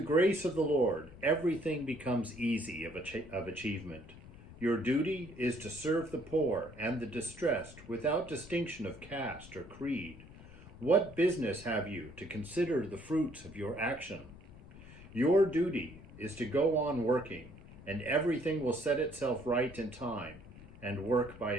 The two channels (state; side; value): noise; left; rumble, 18 dB below the sound